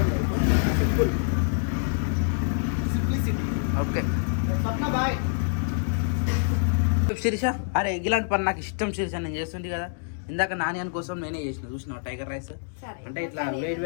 Okay bye. శిరీష, అరే ఇలాంటి పని నాకు ఇష్టం శిరీష, నేను చేస్తుంది కదా. ఇందాక నాని కోసం నేనే చేసిన, చూసిన టైగర్ రైస్ అంటే ఇట్లా వేడి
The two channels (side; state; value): right; silent; digital silence